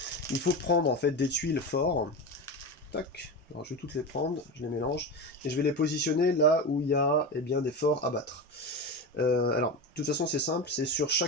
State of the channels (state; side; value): normal; both; correlation 0.22